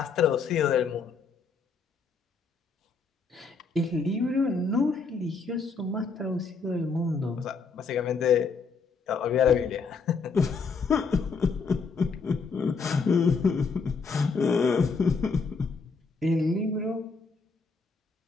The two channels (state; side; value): quieter; right; 4.8 dB